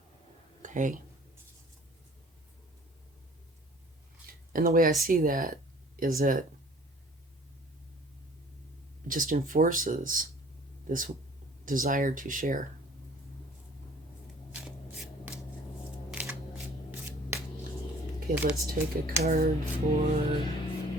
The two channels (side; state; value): both; normal; correlation 0.51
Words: Okay? And the way I see that is that it just enforces this desire to share. Okay, let's take a card for